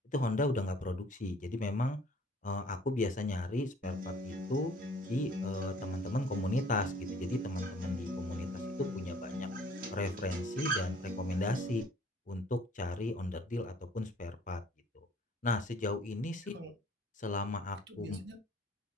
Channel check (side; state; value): both; normal; correlation 0.55